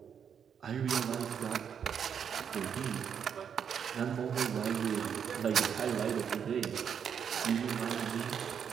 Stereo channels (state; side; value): quieter; left; 7.7 dB